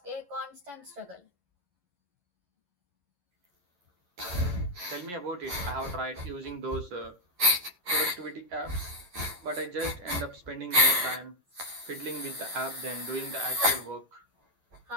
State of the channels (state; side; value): late; left; 10 ms